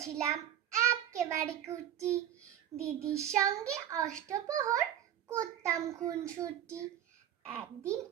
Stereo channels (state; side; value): quieter; left; 10.8 dB